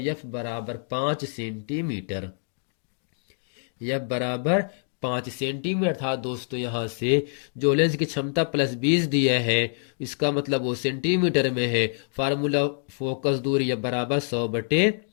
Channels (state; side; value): silent; right; digital silence